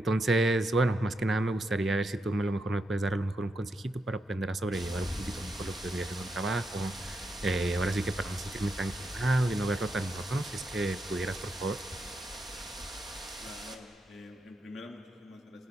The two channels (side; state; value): both; normal; correlation 0.83